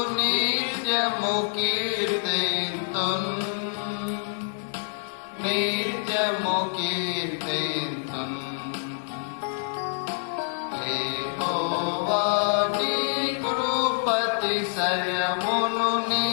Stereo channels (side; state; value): right; silent; 61 dB below the other